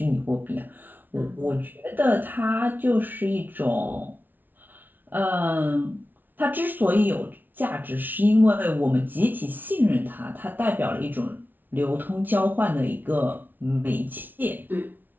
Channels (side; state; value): left; late; 0.088 ms